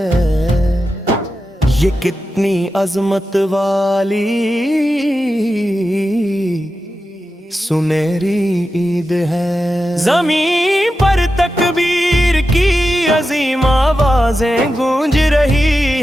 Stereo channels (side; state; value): both; normal; correlation 0.91